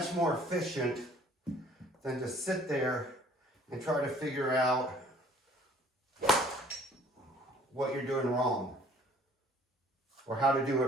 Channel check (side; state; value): both; normal; correlation 0.55